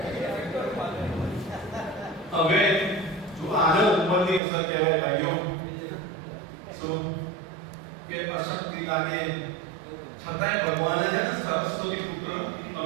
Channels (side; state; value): left; drops out; at 4.4 s